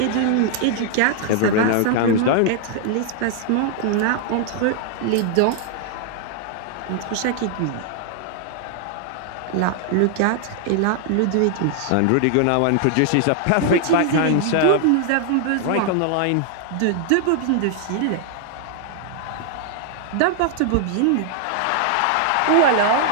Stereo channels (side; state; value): both; different; correlation 0.00